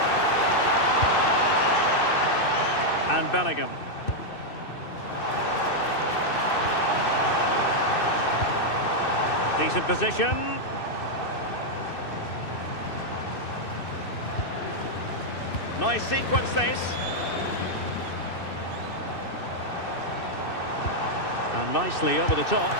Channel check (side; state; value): right; late; 2.6 ms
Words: And Bellingham. Decent position. Nice sequence this. And nicely over the top.